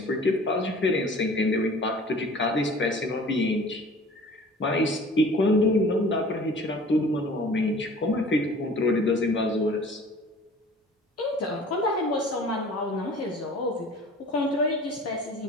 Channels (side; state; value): both; normal; correlation 0.46